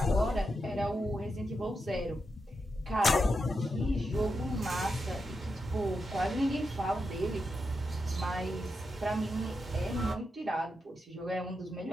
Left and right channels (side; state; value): both; normal; correlation 0.86